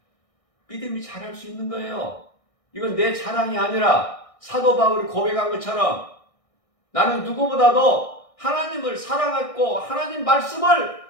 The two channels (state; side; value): late; right; 1.6 ms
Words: 믿음이 자랄 수 있는 거예요. 이건 내 자랑이 아니라 사도 바울이 고백한 것처럼 나는 누구보다도 하나님을 사랑했고 하나님 말씀을